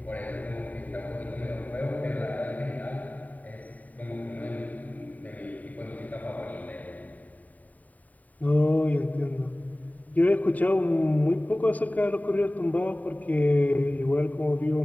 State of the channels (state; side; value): late; right; 0.074 ms